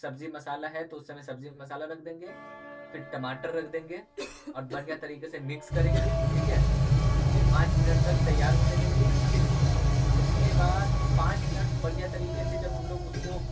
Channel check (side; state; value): both; identical; correlation 1.00